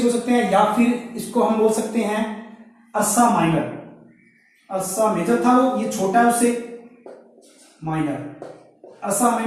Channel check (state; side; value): identical; both; correlation 1.00